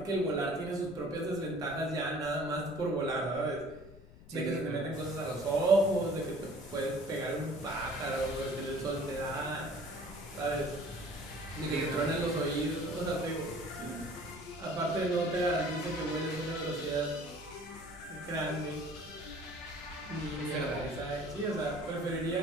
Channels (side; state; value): left; noise; rumble, 19 dB below the sound